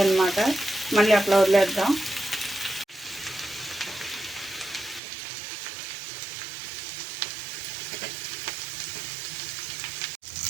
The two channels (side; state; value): left; drops out; at 5.0 s